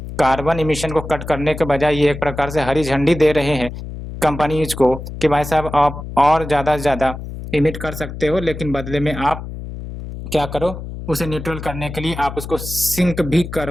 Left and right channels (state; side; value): noise; left; hum, 10 dB below the sound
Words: कार्बन इमिशन को कट करने के बजाय ये एक प्रकार से हरी झंडी दे रहे हैं कंपनीज को कि भाई साहब आप और ज़्यादा से ज़्यादा इमिट कर सकते हो, लेकिन बदले में आप क्या करो, उसे न्यूट्रल करने के लिए आप उसको सिंक भी